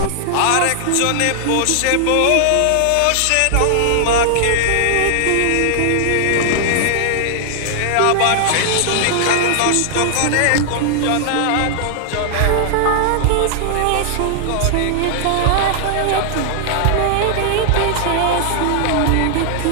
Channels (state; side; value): different; both; correlation 0.00